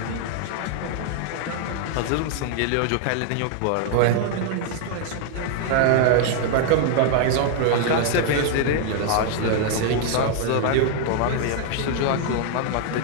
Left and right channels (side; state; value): both; different; correlation 0.00